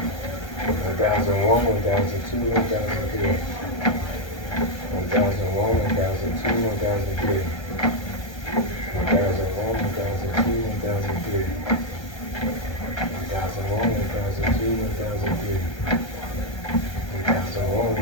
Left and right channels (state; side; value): late; right; 1.3 ms